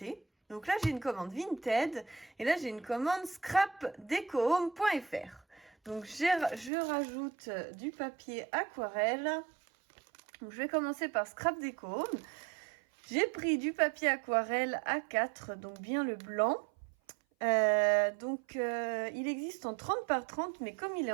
Donc là, j'ai une commande Vinted et là, j'ai une commande scrapdecohome.fr. Donc je rajoute du papier aquarelle. Donc, je vais commencer par Scrap Deco Home. J'ai pris du papier aquarelle A4, donc bien le blanc. Il existe en 30 par 30, mais comme il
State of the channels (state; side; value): drops out; left; at 6.7 s